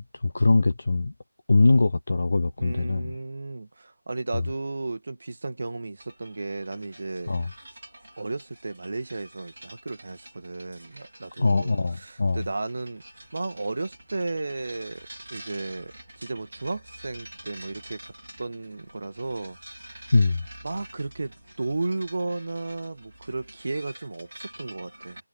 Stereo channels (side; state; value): both; inverted; correlation -0.96